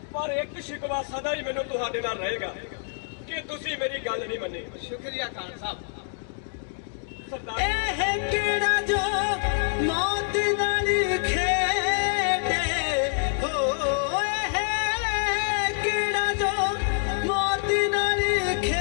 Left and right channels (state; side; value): silent; right; digital silence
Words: ਪਰ ਇੱਕ ਸ਼ਿਕਵਾ ਸਦਾ ਹੀ ਮੈਨੂੰ ਤੁਹਾਡੇ ਨਾਲ ਰਹੇਗਾ ਕਿ ਤੁਸੀਂ ਮੇਰੀ ਗੱਲ ਨਹੀਂ ਮੰਨੀ। ਸ਼ੁਕਰੀਆ ਖਾਨ ਸਾਹਿਬ। ਸਰਦਾਰ ਇਹ ਕਿਹੜਾ ਜੋ ਮੌਤ ਨਾਲ ਖੇਡੇ ਹੋ, ਇਹ ਕਿਹੜਾ ਜੋ ਮੌਤ ਨਾਲ